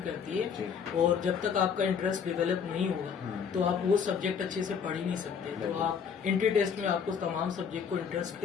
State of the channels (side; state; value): right; quieter; 6.8 dB